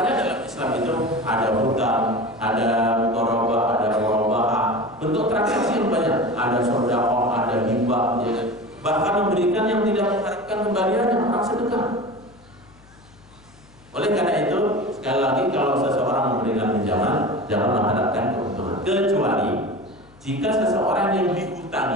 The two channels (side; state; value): left; noise; hum, 26 dB below the sound